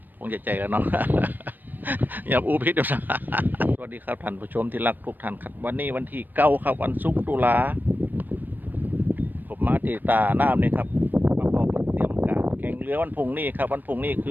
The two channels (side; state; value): left; late; 0.090 ms